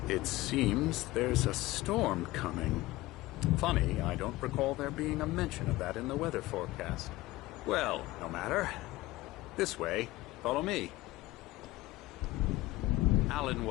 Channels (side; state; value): right; quieter; 18.4 dB